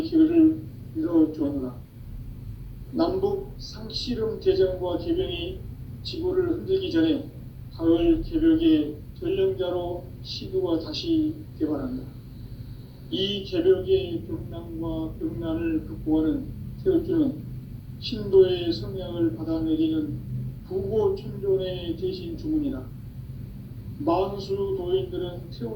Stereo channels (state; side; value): identical; both; correlation 1.00